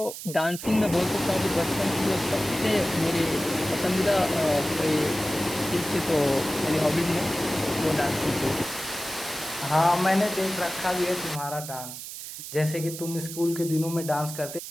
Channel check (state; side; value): noise; right; hiss, 10 dB below the sound